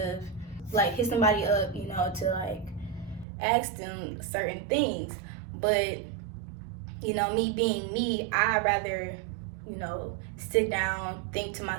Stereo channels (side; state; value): left; drops out; at 3.2 s